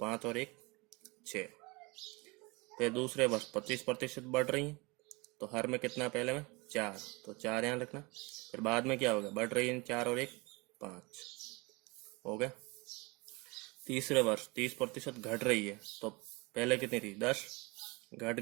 और 1 6। फिर दूसरे वर्ष 25% बढ़ रही है तो हर में कितना पहले में 4, तो 4 यहाँ रखना। फिर बाद में क्या होगा, बढ़ रही है 4 और 1 5 हो गया। तीसरे वर्ष 30% घट रही है तो पहले कितनी थी 10, घट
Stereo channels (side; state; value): left; quieter; 26.1 dB